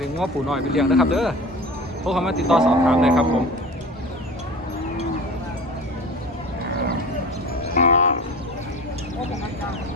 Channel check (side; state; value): both; normal; correlation 0.36